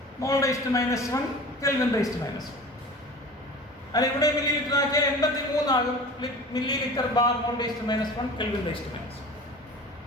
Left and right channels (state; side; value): normal; both; correlation 0.38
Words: മോൾ/-1 Kelvin/-1. അല്ല, ഇവിടെ മില്ലി ലിറ്റർ ആക്കിയാൽ 83 ആകും. മില്ലി ലിറ്റർ ബാർ മോൾ/-1 Kelvin/-1.